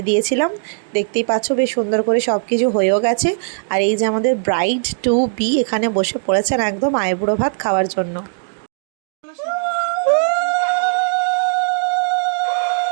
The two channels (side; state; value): left; silent; digital silence